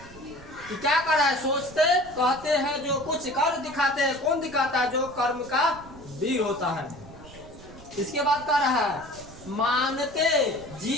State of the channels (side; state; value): right; noise; rumble, 19 dB below the sound